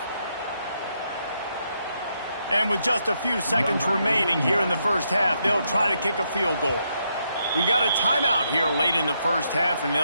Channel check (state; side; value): inverted; both; correlation -0.79